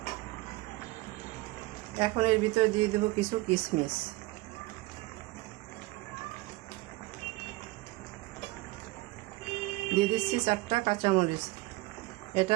এখন এর ভিতরে দিয়ে দেবো কিছু কিশমিশ। দিয়ে দিচ্ছি 4টা কাঁচামরিচ। এটা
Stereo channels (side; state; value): left; quieter; 20.3 dB